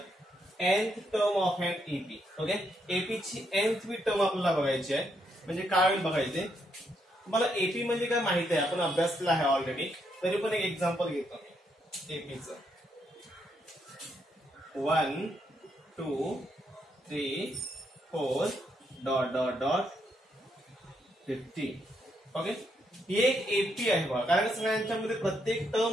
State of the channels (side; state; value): both; normal; correlation 0.77